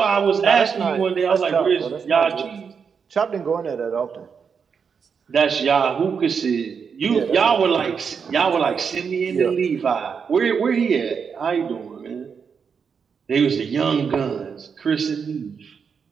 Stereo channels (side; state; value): left; quieter; 6.3 dB